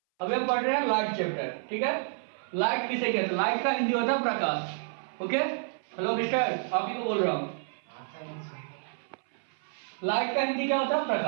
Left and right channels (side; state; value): left; silent; 58 dB below the other